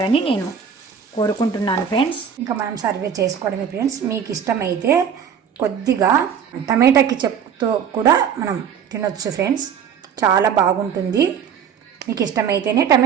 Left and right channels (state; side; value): quieter; left; 7.7 dB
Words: నేను కోరుకుంటున్నాను ఫ్రెండ్స్. ఇంకా మనం సర్వ్ చేసుకోవడమే ఫ్రెండ్స్. మీకు ఇష్టమైతే కొద్దిగా టమాటా కెచప్తో కూడా మనం తినొచ్చు ఫ్రెండ్స్, చాలా బాగుంటుంది. మీకు ఇష్టమైతేనే